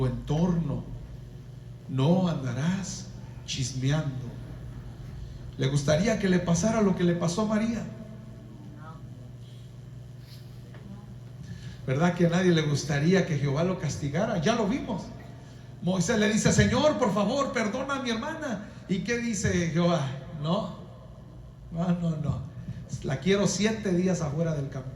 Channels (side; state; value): both; identical; correlation 1.00